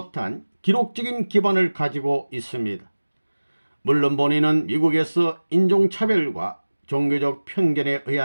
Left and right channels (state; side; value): inverted; both; correlation -1.00